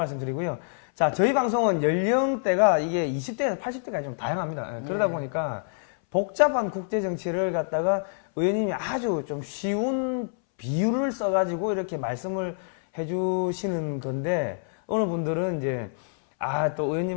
드리고요. 자, 저희 방송은 연령대가 이게 20대에서 80대까지 좀 다양합니다. 그러다 보니까 복잡한 국제 정치를 갖다가 의원님이 아주 좀 쉬운 비유를 써가지고 이렇게 말씀을 해주시는 건데, 어느 분들은 이제, 또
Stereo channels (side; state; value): right; silent; 61 dB below the other